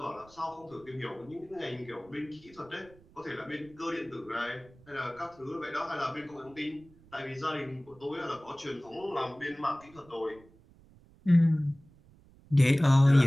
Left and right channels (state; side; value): noise; right; rumble, 26 dB below the sound